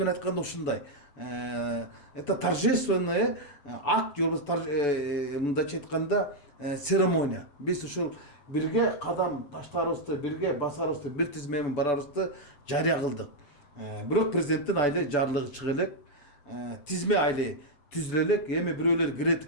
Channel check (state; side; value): late; right; 7.7 ms